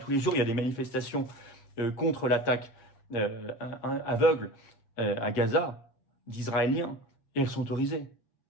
les jours, il y a des manifestations contre l'attaque aveugle à Gaza d'Israéliens, et elles sont autorisées.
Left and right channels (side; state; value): right; late; 7.5 ms